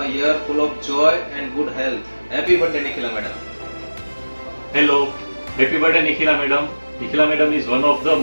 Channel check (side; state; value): both; inverted; correlation -1.00